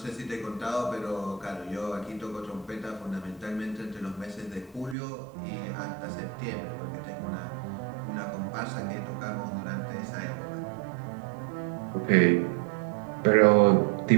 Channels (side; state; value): left; drops out; at 5.0 s